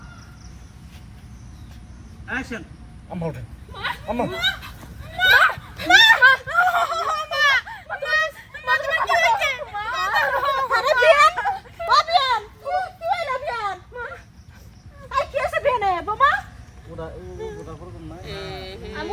অ্যাকশন আম্মা ওঠেন আম্মা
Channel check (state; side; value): identical; both; correlation 1.00